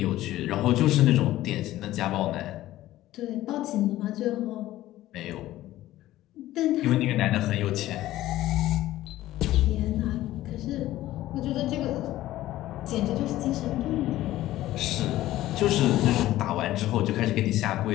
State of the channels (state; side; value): quieter; right; 15.1 dB